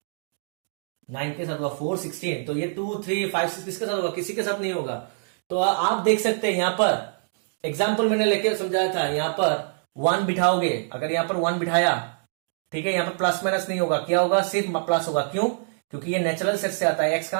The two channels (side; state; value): left; silent; digital silence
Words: 9 के साथ हुआ। 4 16, तो ये 2 3 5 6 किसके साथ होगा, किसी के साथ नहीं होगा। तो आप देख सकते हैं यहां पर एग्जाम्पल मैंने लेके समझाया था, यहां पर 1 बिठाओगे, अगर यहां पर 1 बिठाया, ठीक है, यहां पर प्लस माइनस नहीं होगा, क्या होगा, सिर्फ प्लस होगा। क्यों, क्योंकि ये नेचुरल सेट से आता है। एक्स